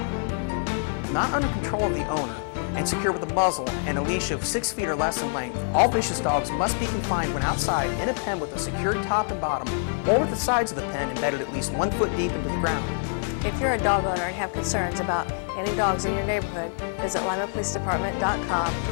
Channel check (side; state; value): right; silent; digital silence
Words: Not under control of the owner and secure with a muzzle and a leash of 6 feet or less in length, all vicious dogs must be confined when outside in a pen with a secured top and bottom, or with the sides of the pen embedded at least 1 foot deep into the ground. If you're a dog owner and have concerns about any dogs in your neighborhood, visit limapolicedepartment.com